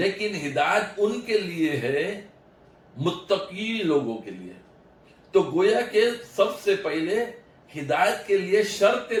ہدایت ان کے لیے ہے متقی لوگوں کے لیے۔ تو گویا کہ سب سے پہلے ہدایت کے لیے شرط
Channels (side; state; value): both; identical; correlation 1.00